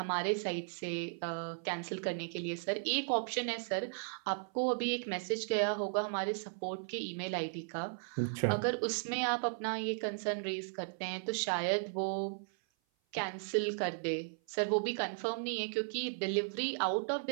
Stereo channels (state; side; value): silent; left; 54 dB below the other